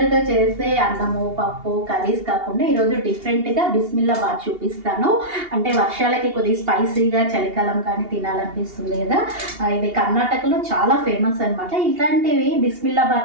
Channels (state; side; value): late; left; 2.8 ms